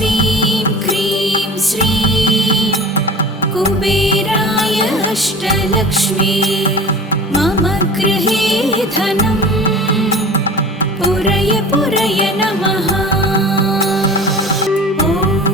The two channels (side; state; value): both; normal; correlation 0.38